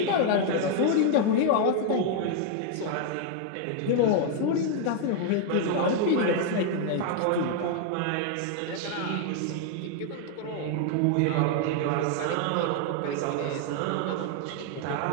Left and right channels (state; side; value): different; both; correlation 0.00